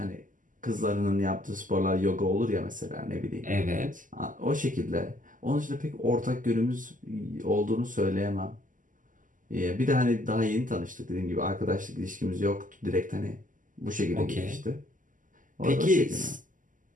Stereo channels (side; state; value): left; late; 0.38 ms